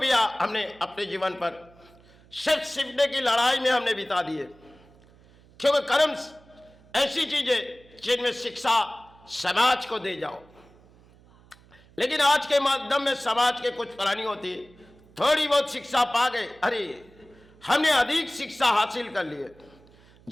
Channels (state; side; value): noise; right; hum, 27 dB below the sound